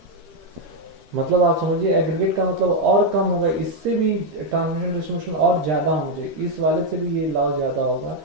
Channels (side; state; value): left; late; 13 ms